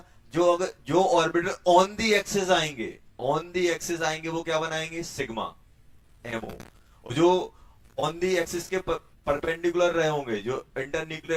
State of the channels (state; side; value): identical; both; correlation 1.00